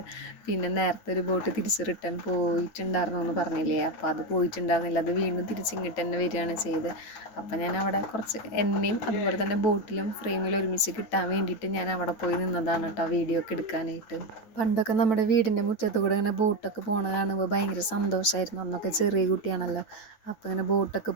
പിന്നെ നേരത്തെ ഒരു ബോട്ട് തിരിച്ച് റിട്ടേൺ പോയിട്ടുണ്ടായിരുന്നു എന്ന് പറഞ്ഞില്ലേ, അപ്പോൾ അത് പോയിട്ടുണ്ടായിരുന്നില്ല, അത് വീണ്ടും തിരിച്ചിങ്ങോട്ട് തന്നെ വരികയാണ് ചെയ്ത്. അപ്പം ഞാൻ അവിടെ കുറച്ച് എന്നെയും അതുപോലെ തന്നെ ബോട്ടിലും ഫ്രെയിമിലും ഒരുമിച്ച് കിട്ടാൻ വേണ്ടിയിട്ട് ഞാൻ അവിടെ പോയി നിന്നതാണ് കേട്ടോ വീഡിയോ ഒക്കെ എടുക്കാനായിട്ട്. പണ്ടൊക്കെ നമ്മുടെ വീടിൻ്റെ മുറ്റത്ത് കൂടെ ഇങ്ങനെ ബോട്ടൊക്കെ പോകണ കാണുമ്പോൾ ഭയങ്കര സന്തോഷമായിരുന്നു. അന്നൊക്കെ ചെറിയ കുട്ടിയാണല്ലോ. അപ്പോൾ ഇങ്ങനെ ബോട്ടൊക്കെ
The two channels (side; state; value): right; late; 9.2 ms